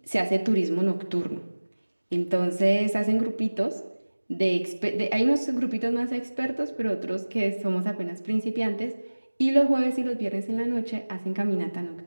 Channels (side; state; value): both; inverted; correlation -1.00